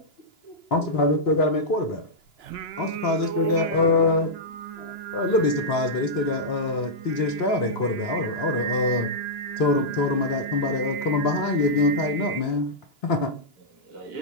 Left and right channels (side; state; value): right; late; 2.9 ms